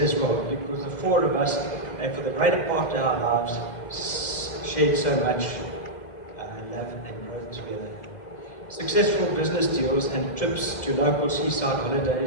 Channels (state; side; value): late; right; 2.0 ms